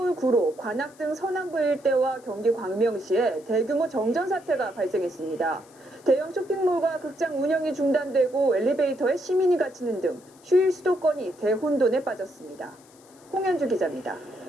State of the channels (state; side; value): noise; left; hiss, 27 dB below the sound